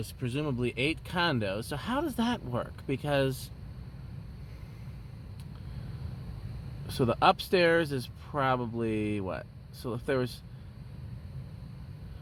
presumably 8 condos. So how does that work? Because so the upstairs is probably what? So if there was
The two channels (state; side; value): identical; both; correlation 1.00